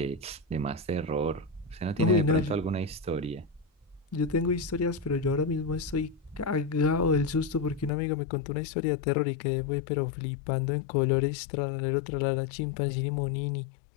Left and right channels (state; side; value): drops out; right; at 7.9 s